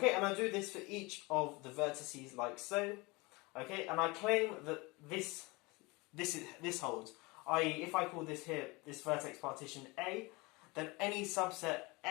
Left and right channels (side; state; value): right; quieter; 25.1 dB